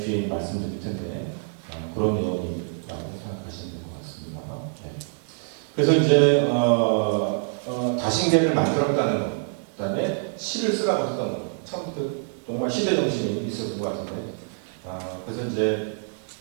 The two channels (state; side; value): silent; left; digital silence